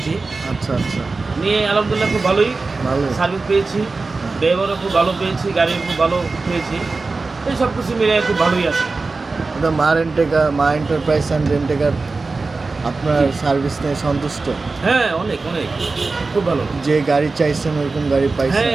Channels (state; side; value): quieter; left; 3.9 dB